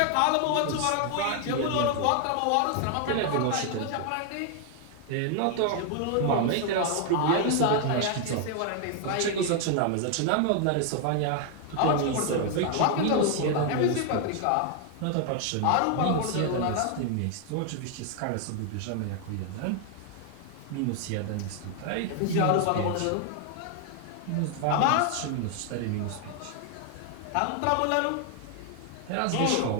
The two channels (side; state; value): both; different; correlation 0.00